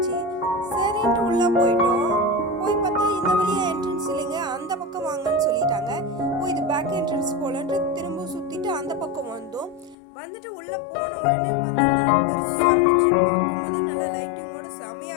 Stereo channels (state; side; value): drops out; right; at 10.0 s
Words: சரின்ட்டு உள்ளே போயிட்டோம். போய் பார்த்தா இந்த வழியாக என்ட்ரன்ஸ் இல்லைங்க, அந்த பக்கம் வாங்கன்னு சொல்லிட்டாங்க. இது பேக் என்ட்ரன்ஸ் போலன்ட்டு திரும்ப சுற்றிட்டு அந்த பக்கம் வந்தோம். வந்துட்டு உள்ளே போன உடனே பார்த்தீங்கன்னா பெருசாக இருந்துச்சு. பார்க்கும்போதே நல்லா லைட்டிங்கோட